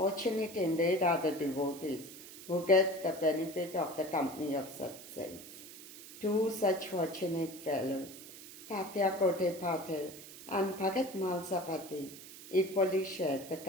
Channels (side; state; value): right; noise; hiss, 15 dB below the sound